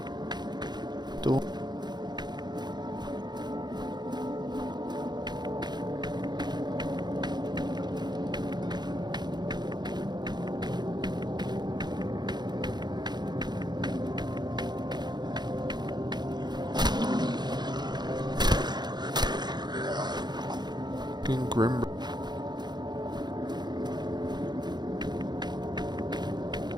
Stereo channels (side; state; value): left; late; 0.21 ms